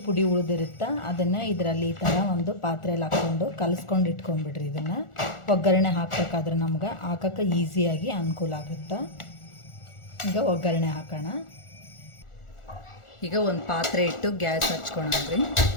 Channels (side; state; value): right; late; 1.4 ms